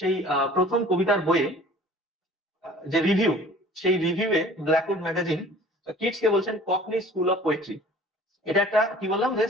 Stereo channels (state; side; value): normal; both; correlation 0.49